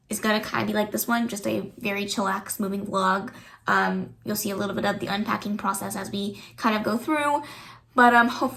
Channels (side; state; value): both; identical; correlation 1.00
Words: is gonna kind of be like this one, just a very chillax moving vlog. You'll see a little bit of the unpacking process as we kind of go through, but